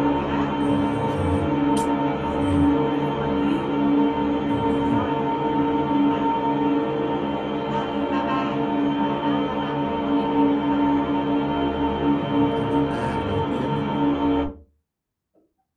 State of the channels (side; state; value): both; identical; correlation 1.00